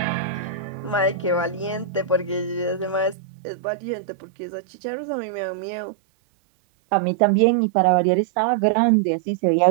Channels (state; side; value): drops out; left; at 3.2 s